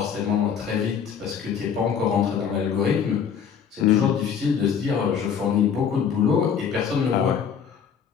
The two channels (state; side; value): quieter; right; 7.4 dB